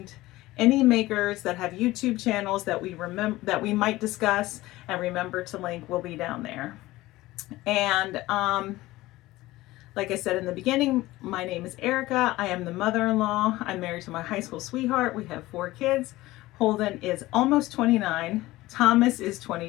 any makers that have YouTube channels that we might discuss and remember to link will be down there. And like I said in the beginning, my name is Erica. I am the mother-in-law. I'm married to my high school sweetheart. We have 4 kids. Holden is almost 29. Thomas is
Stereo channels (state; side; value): quieter; right; 18.1 dB